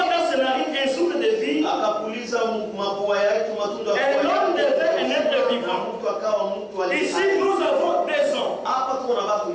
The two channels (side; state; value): both; identical; correlation 1.00